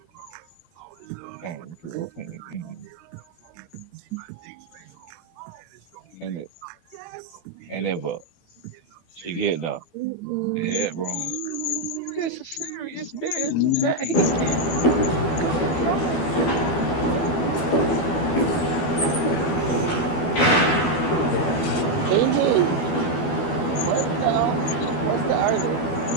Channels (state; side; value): late; right; 12 ms